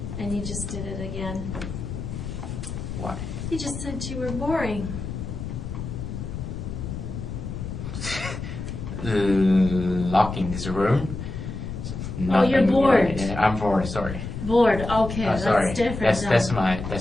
And you just did it again. Why? You just said you were boring. Locking this room. Oh, you're bored. Yeah, I'm bored. Sorry. Bored. Okay, Sorry. that's different.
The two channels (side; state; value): left; noise; rumble, 7 dB below the sound